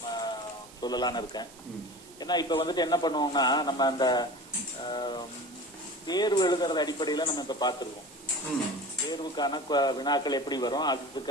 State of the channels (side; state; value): right; noise; hiss, 21 dB below the sound